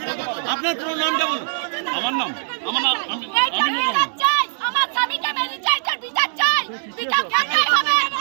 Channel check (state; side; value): silent; left; digital silence